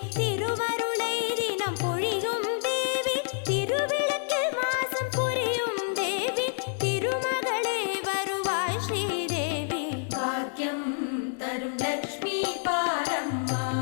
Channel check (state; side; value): silent; right; digital silence